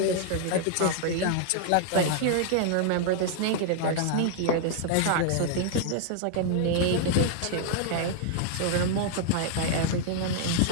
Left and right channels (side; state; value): both; different; correlation -0.01